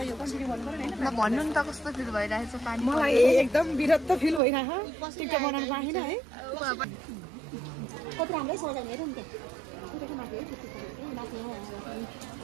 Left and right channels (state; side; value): drops out; left; at 4.4 s